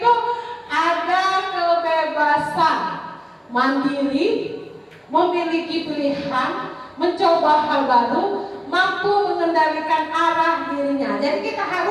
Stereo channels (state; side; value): identical; both; correlation 1.00